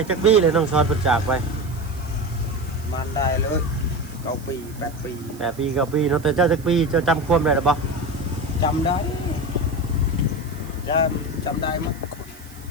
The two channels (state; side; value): noise; right; hiss, 22 dB below the sound